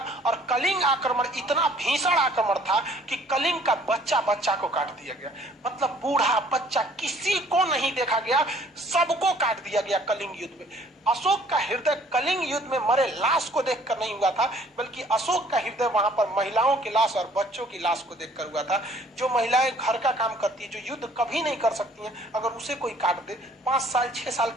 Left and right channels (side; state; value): both; normal; correlation 0.57